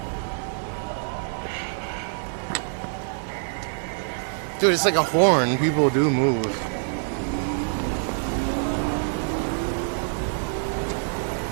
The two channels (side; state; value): left; silent; digital silence